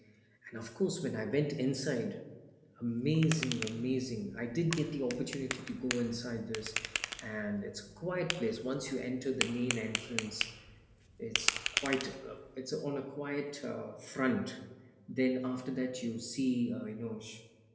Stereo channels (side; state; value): both; identical; correlation 1.00